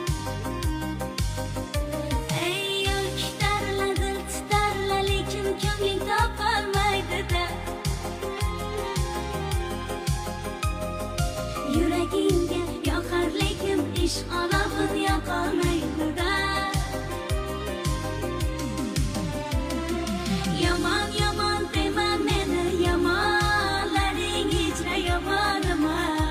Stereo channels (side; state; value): both; identical; correlation 1.00